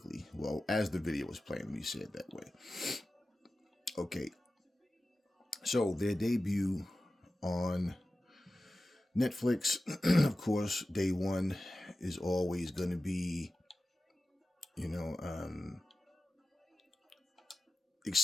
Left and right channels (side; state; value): both; normal; correlation 0.94